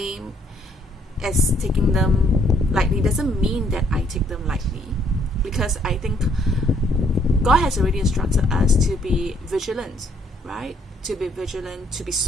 as taking them lightly. Doesn't mean that I take them lightly, because I think God has already instructed us to be vigilant, right? To be vigilant, to be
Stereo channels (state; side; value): normal; both; correlation 0.67